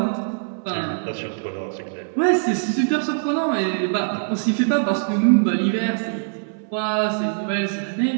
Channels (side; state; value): left; silent; digital silence